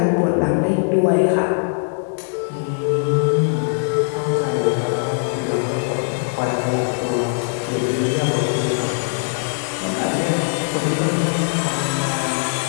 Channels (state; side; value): silent; right; 63 dB below the other